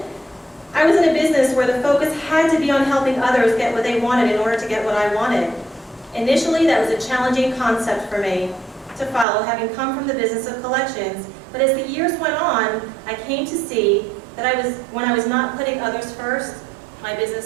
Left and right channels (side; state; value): left; drops out; at 9.2 s